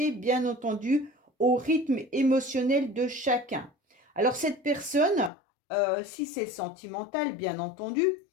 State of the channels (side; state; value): right; drops out; at 5.3 s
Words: bien entendu, au rythme émotionnel de chacun. Alors cette personne, si c'est sentimental, bien entendu,